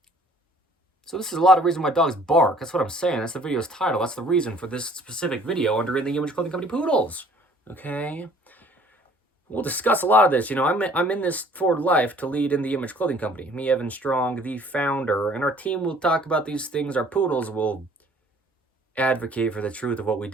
So this is a lot of reason why dogs bark. That's what I'm saying. That's the video's title. That's the reason for this specific video under In the Image Clothing Company Poodles. Okay? We'll discuss a lot of this. You know, I'm in this for life to lead In the Image Clothing Company. Me, Evan Strong, the founder, and our team will talk about these things. Our poodles will advocate for the truth of what we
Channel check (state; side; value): normal; both; correlation 0.55